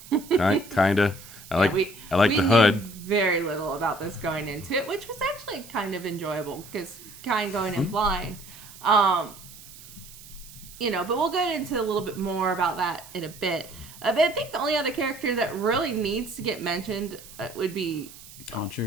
kind of. I like the hood. Knew very little about this going into it, which was actually kind of enjoyable because kind of going in blind. But we'll get into a little bit more about that in a bit. But I think the only other character that really needs to get mentioned would be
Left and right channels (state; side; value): noise; right; hiss, 18 dB below the sound